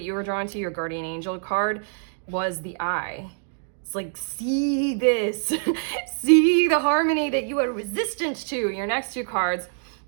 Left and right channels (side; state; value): left; silent; digital silence